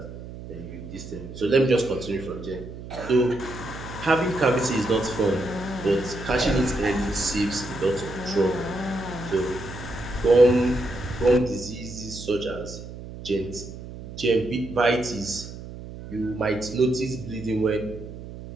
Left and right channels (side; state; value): right; noise; hum, 12 dB below the sound